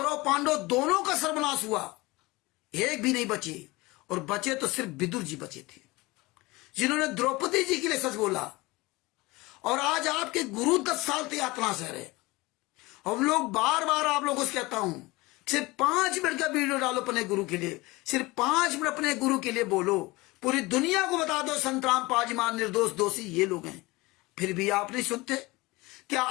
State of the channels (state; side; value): quieter; right; 22.0 dB